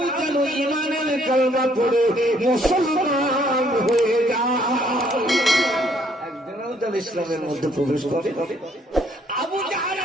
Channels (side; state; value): both; normal; correlation 0.66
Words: যেন ঈমানের কালেমা পড়ে মুসলমান হয়ে যায়, একজনও যেন ইসলামের মধ্যে প্রবেশ করে। আবু